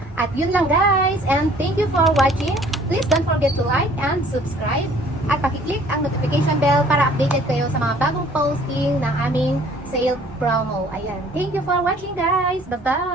At yun lang guys, and thank you for watching. Please don't forget to like and subscribe at pakiclick ang notification bell para updated kayo sa mga bagong posting ng aming sale promo. Ayan, thank you for watching guys. Bye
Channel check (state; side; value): normal; both; correlation 0.55